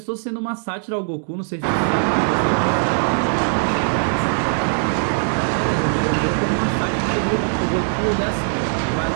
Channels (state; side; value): silent; left; digital silence